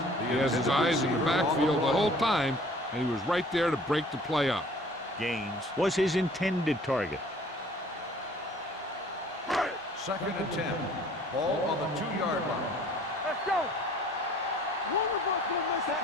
He has his eyes in the backfield the whole time, and he was right there to break the play up. Gaines was his intended target. Second and 10. Ball on the 2-yard line. Let's go. One of us will make that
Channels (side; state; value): both; normal; correlation 0.53